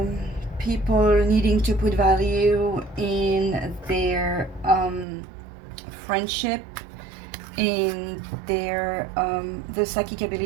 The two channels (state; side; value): drops out; left; at 5.1 s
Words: people needing to put value in their friendship, in their the psychic